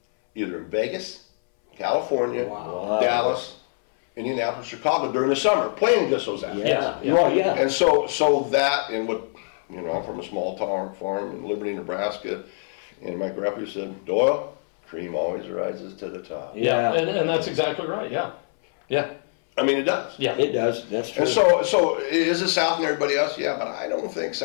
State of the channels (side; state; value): right; silent; 62 dB below the other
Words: either in Vegas, California, Wow. Dallas, Indianapolis, Chicago during the summer, playing against those athletes. Yeah. Yeah. Well, yeah. And so that, and what, I'm from a small town farm in Liberty, Nebraska, and my grandpa said, Doyle, cream always rises to the top. Yeah, Yeah. and that's exactly right. Yeah. I mean, it does. Yeah. It does, that's true. And so is it South and everybody else? Yeah, but I don't think